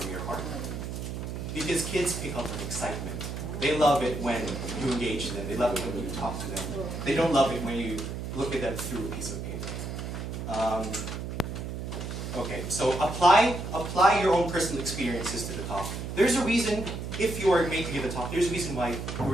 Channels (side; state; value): right; noise; hum, 6 dB below the sound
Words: your heart. Because kids pick up on excitement. They love it when you engage them. They love it when you talk to them. They don't love it when you look at them through a piece of paper. Okay, so apply your own personal experiences to the talk. There's a reason, if you are made to give a talk, there's a reason why you were